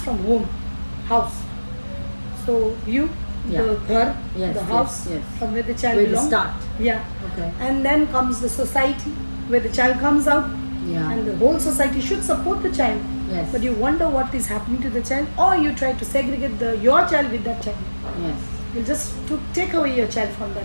from home, house. So you, Yeah. the ghar, Yes, the house, yes. from where the child Where we belongs. start. Yeah. Okay. And then comes the society, where the child comes out, Yeah. and the whole society should support the child. Yes. But you wonder what is happening to the child, or you try to segregate your child with that child. Yes. You just take away your child from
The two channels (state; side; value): inverted; both; correlation -1.00